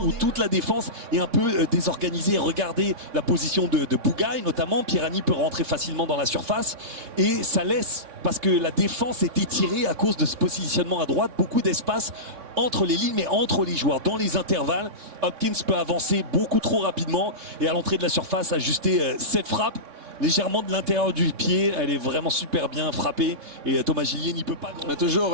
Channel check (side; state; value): left; late; 3.6 ms